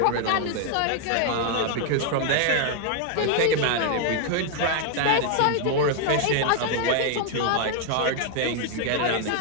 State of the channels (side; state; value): both; different; correlation 0.00